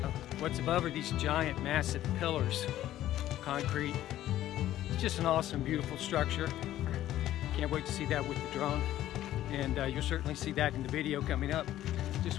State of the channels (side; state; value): right; quieter; 13.4 dB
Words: What's above are these giant, massive pillars, concrete. It's just an awesome, beautiful structure. Can't wait to see that with the drone, and you'll certainly see that in the video coming up.